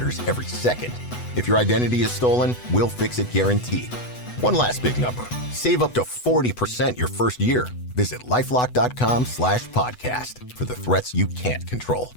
every second. If your identity is stolen, we'll fix it guaranteed. One last big number. Save up to 40% your first year. Visit lifelock.com/podcast for the threats you can't control.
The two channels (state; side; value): late; right; 8.1 ms